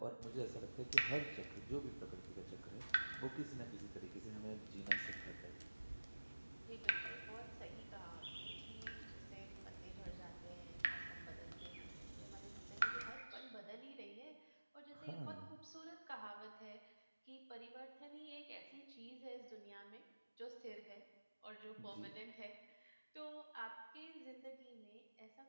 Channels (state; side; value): inverted; both; correlation -1.00